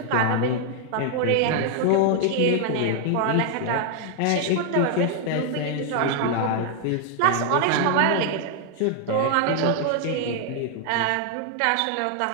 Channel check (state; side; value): different; both; correlation 0.00